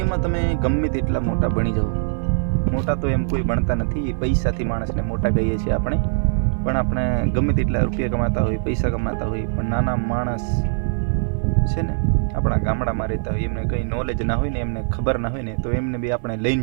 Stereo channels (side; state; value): left; silent; digital silence